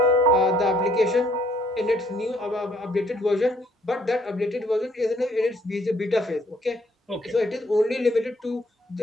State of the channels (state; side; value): normal; both; correlation 0.65